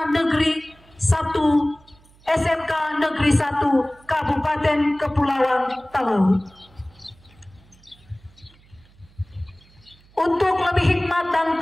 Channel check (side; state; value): right; noise; hum, 28 dB below the sound